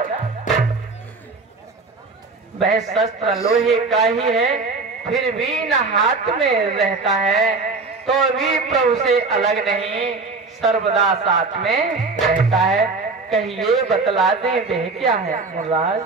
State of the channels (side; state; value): left; quieter; 4.1 dB